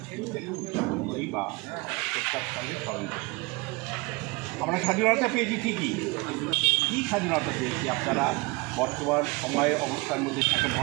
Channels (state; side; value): quieter; left; 25.8 dB